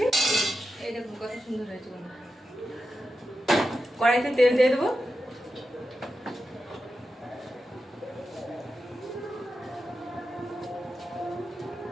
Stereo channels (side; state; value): both; normal; correlation 0.90